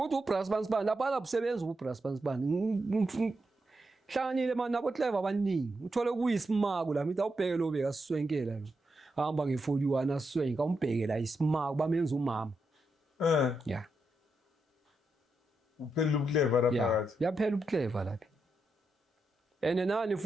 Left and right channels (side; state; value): both; normal; correlation 0.84